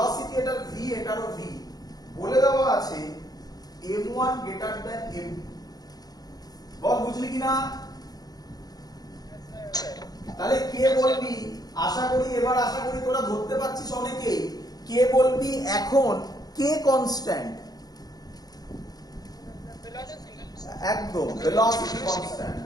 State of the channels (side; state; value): right; late; 0.19 ms